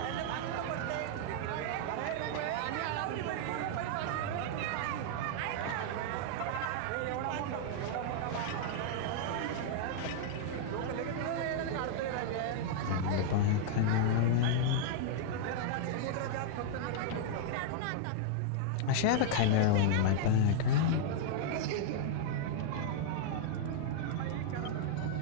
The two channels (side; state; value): both; different; correlation -0.01